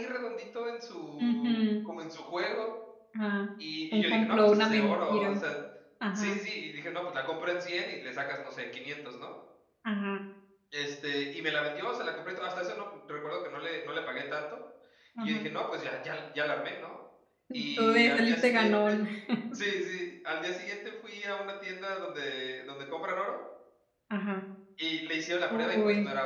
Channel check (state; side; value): identical; both; correlation 1.00